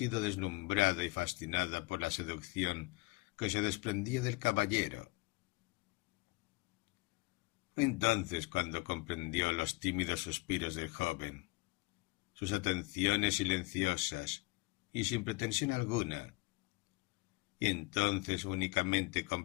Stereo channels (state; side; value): quieter; right; 24.6 dB